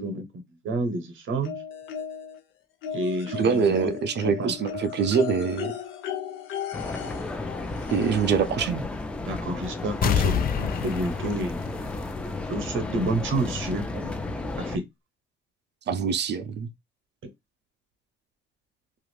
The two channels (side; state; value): both; normal; correlation 0.42